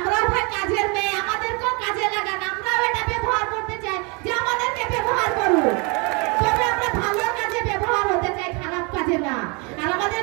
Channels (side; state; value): left; quieter; 31.2 dB